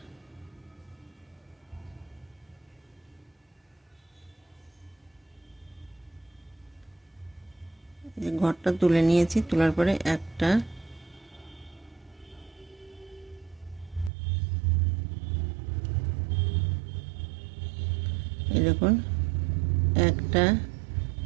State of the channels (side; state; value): left; drops out; at 14.1 s